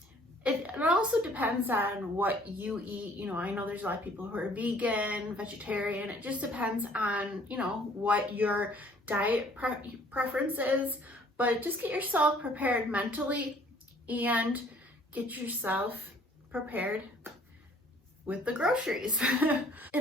It also depends on what you eat. I know there's a lot of people who are vegan, vegetarian. It just depends on, what your diet preference is. But just get yourself prepared mentally and get yourself prepared with the groceries.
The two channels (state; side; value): normal; both; correlation 0.57